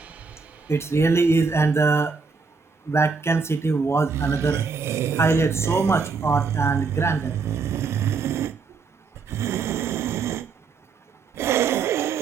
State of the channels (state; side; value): quieter; left; 4.9 dB